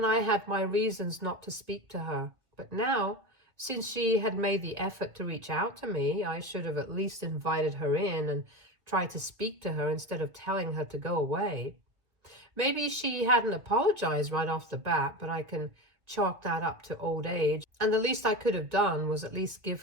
I had my reasons not to speak to her. But now, since she had made the effort to reach out to me, I should have at least invited her in and tried to speak to her instead of telling her to go away. Maybe she hadn't apologized right off the bat, but I can chalk that up to old age. And the least I could have done was at least give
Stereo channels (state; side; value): late; left; 1.7 ms